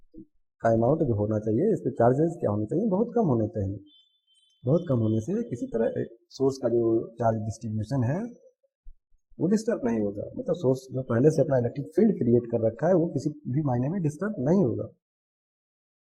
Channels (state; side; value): identical; both; correlation 1.00